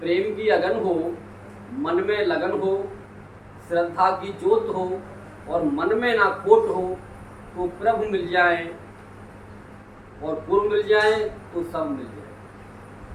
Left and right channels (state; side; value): identical; both; correlation 1.00